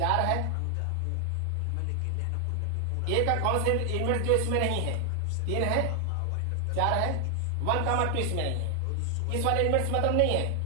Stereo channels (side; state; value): both; different; correlation 0.00